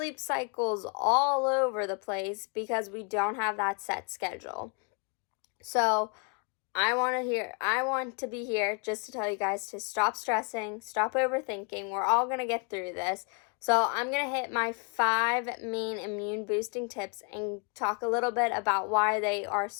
cycle's all over the place because we don't have that set schedule. So I want to be here just to tell you guys to stop stressing, stop overthinking. We're all going to get through this. So I'm going to hit my 5 main immune boosting tips and talk a little bit about why they are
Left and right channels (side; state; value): right; quieter; 34.4 dB